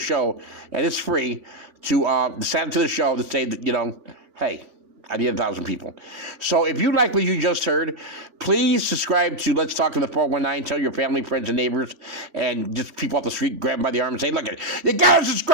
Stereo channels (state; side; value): late; left; 3.4 ms